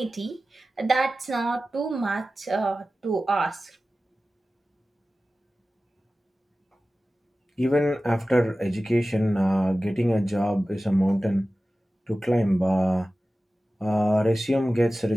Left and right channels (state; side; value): normal; both; correlation 0.96